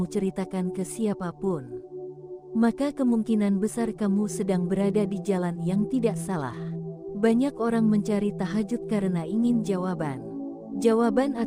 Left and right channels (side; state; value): both; identical; correlation 1.00